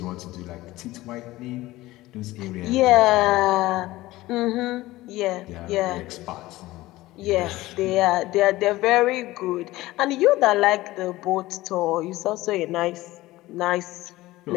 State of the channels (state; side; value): quieter; right; 17.8 dB